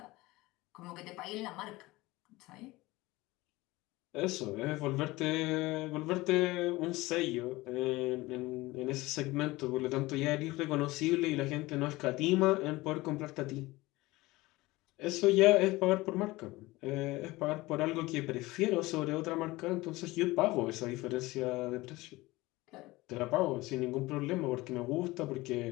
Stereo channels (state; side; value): quieter; right; 20.2 dB